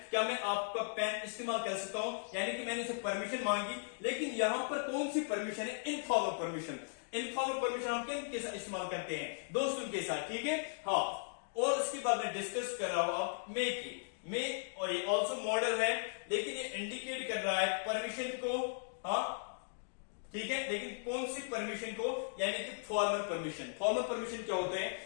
क्या मैं आपका पेन इस्तेमाल कर सकता हूं, यानी कि मैंने उसे परमिशन मांगी। लेकिन यहां पर कौन सी परमिशन है, इनफॉर्मल परमिशन। इनफॉर्मल परमिशन हम किन साथ इस्तेमाल करते हैं, दोस्तों के साथ, ठीक है, हाँ। और उसके बाद मैं डिस्कस कर रहा हूं अब मे की, मे और ये ऑल्सो मॉडल है, लेकिन ये इंडिकेट कर रहा है परमिशन को, हाँ, ठीक है। लेकिन कौन सी परमिशन को, यानी कि फॉर्मल परमिशन। फॉर्मल परमिशन क्या होते हैं,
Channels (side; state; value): right; silent; digital silence